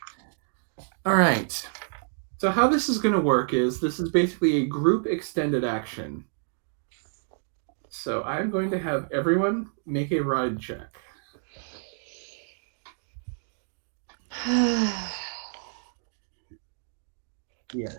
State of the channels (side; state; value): left; silent; digital silence